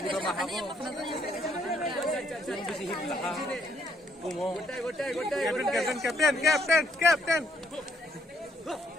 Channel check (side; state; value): both; normal; correlation 0.70